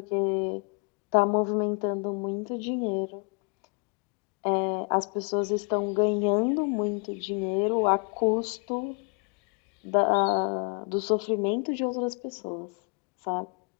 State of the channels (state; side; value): quieter; right; 36.3 dB